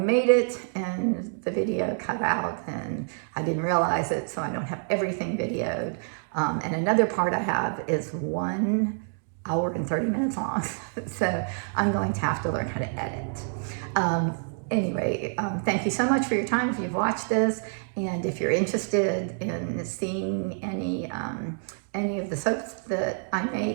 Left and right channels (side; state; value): left; silent; 60 dB below the other